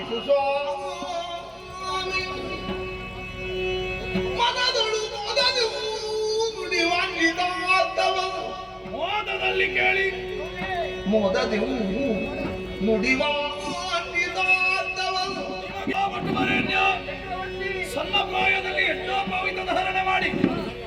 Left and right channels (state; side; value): identical; both; correlation 1.00